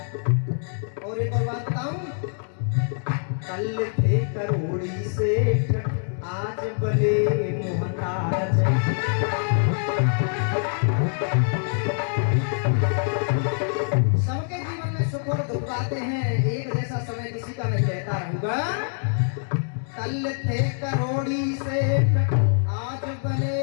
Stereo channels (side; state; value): right; silent; 62 dB below the other